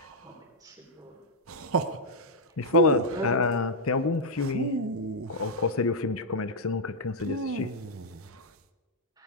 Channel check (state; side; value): normal; both; correlation -0.06